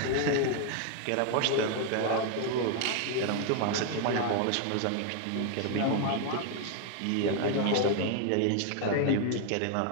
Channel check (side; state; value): both; different; correlation 0.00